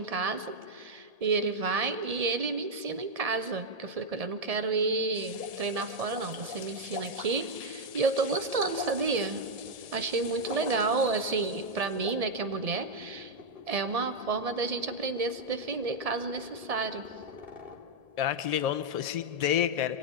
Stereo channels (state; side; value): late; left; 1.7 ms